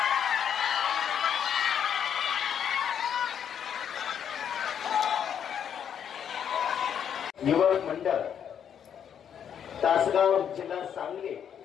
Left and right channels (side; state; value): right; quieter; 8.5 dB